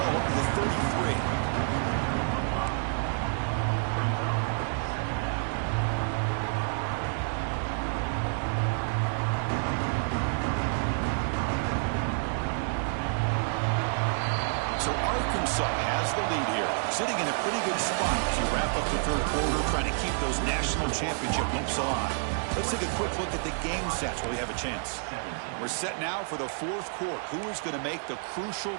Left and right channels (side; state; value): left; silent; 59 dB below the other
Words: up to the 33. Has the lead here, sitting in a pretty good spot as you wrap up the third quarter, trying to keep those national championship hopes alive. Let's take a quick look at the game stats while we have a chance. We're set now for the fourth quarter. Who is going to make the crucial